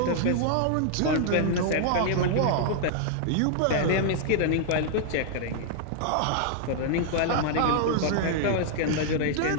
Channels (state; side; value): different; both; correlation -0.01